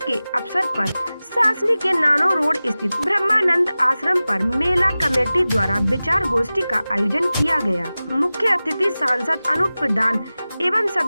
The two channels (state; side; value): inverted; both; correlation -0.97